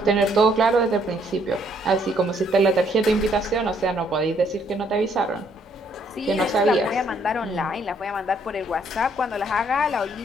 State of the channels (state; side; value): normal; both; correlation 0.68